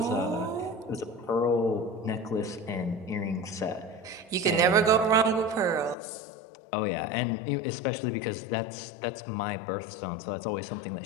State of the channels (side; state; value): right; drops out; at 6.0 s